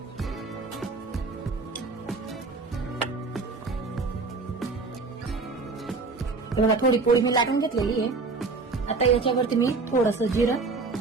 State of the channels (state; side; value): quieter; left; 4.0 dB